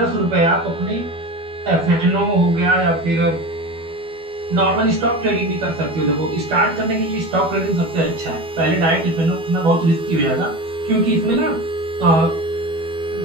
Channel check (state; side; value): late; left; 12 ms